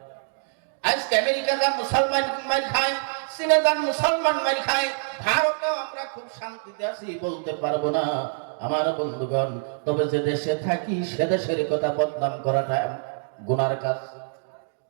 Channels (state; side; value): silent; left; digital silence